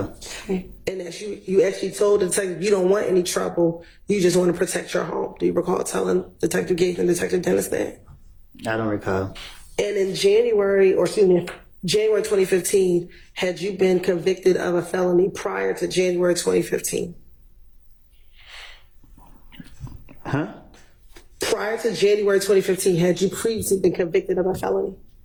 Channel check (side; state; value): both; identical; correlation 1.00